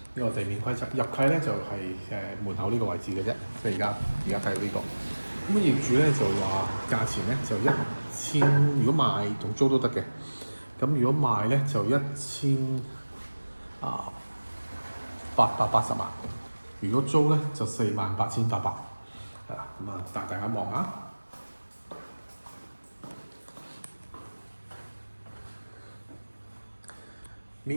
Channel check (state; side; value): inverted; both; correlation -1.00